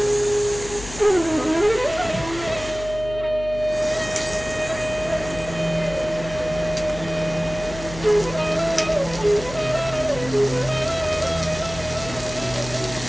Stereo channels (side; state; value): left; noise; hum, 13 dB below the sound